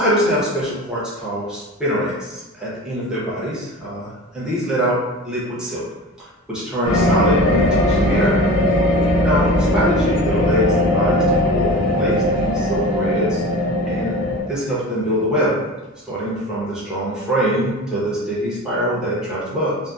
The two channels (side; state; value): both; normal; correlation 0.34